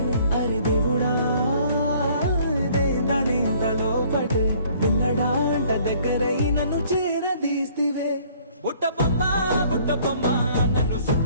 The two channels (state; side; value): inverted; both; correlation -0.58